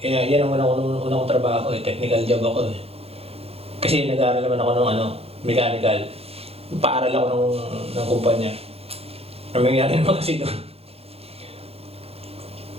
yan ang una kong trabaho. Technical job ako. Kasi nag-aaral naman ako ng mechanical. Paaral ako ng kumpanya. Ang nangyari naman kasi doon,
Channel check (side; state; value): left; late; 0.29 ms